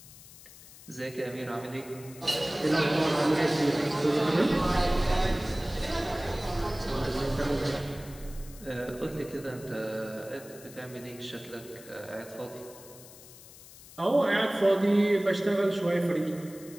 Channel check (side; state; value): left; noise; hiss, 19 dB below the sound